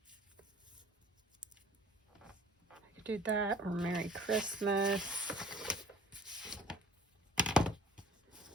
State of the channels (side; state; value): both; normal; correlation 0.49